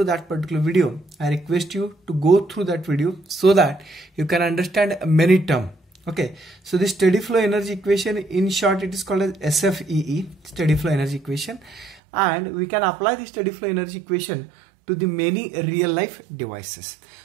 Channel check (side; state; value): left; drops out; at 12.0 s